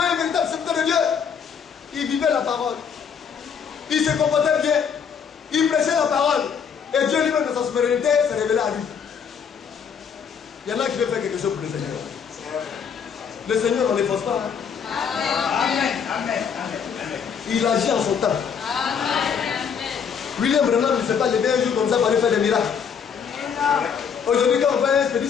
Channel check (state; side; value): quieter; right; 7.0 dB